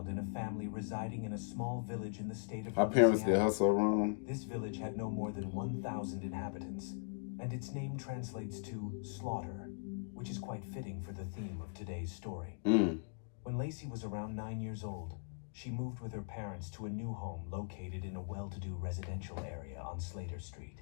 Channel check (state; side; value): silent; right; digital silence